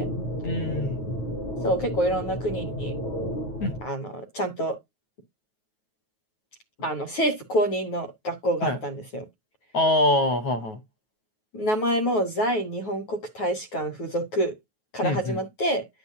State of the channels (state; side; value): late; right; 9.3 ms